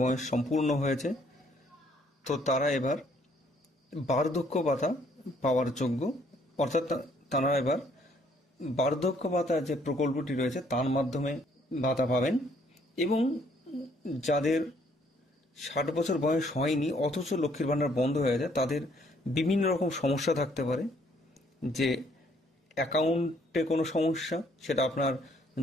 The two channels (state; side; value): normal; both; correlation 0.65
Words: বয়স সম্পূর্ণ হয়েছে তো তারা এবার বার্ধক্য ভাতা পাওয়ার যোগ্য, অর্থাৎ তারা এবার বার্ধক্য ভাতা যে প্রকল্পটি রয়েছে তার মাধ্যমে ভাতা পাবেন। এবং যাদের 60 বছর বয়স হয়নি অথচ লক্ষ্মীর ভাণ্ডার বন্ধ হয়ে যায়, তাদের বিভিন্ন রকম সমস্যা থাকতে পারে। যে অ্যাকাউন্টে কোনো সমস্যা, সেটা আপনার